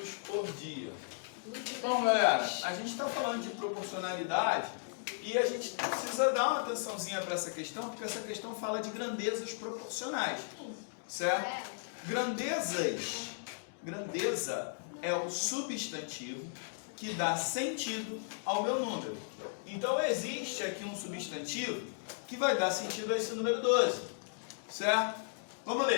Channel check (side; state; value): right; silent; digital silence